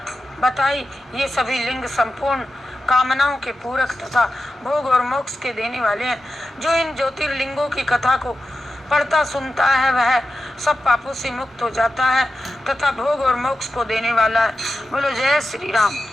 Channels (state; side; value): normal; both; correlation 0.92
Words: बताई। ये सभी लिंग संपूर्ण कामनाओं के पूरक तथा भोग और मोक्ष के देने वाले हैं। जो इन ज्योतिर्लिंगों की कथा को पढ़ता सुनता है वह सब पापों से मुक्त हो जाता है तथा भोग और मोक्ष को देने वाला है। बोलो जय श्री राम।